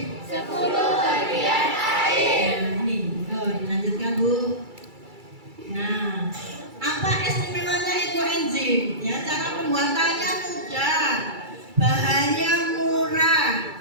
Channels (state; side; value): late; left; 2.3 ms